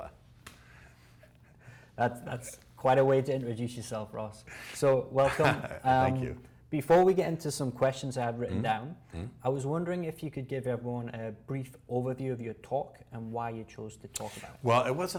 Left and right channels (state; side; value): identical; both; correlation 1.00